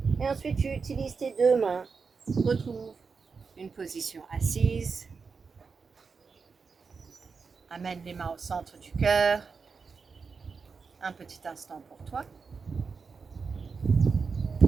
Et ensuite, tu utilises tes deux mains. Retrouve une position assise. Amène les mains au centre du cœur. Un petit instant pour toi.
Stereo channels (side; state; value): left; quieter; 5.1 dB